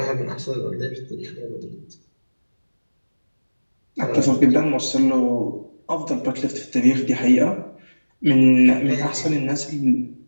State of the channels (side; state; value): both; inverted; correlation -1.00